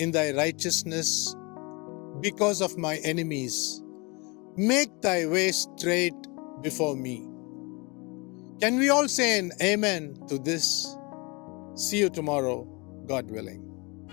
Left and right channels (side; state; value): right; quieter; 28.2 dB